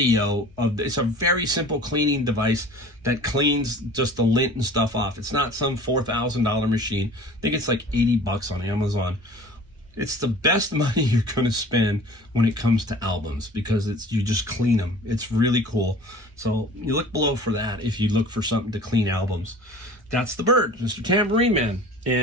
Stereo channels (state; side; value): normal; both; correlation 0.43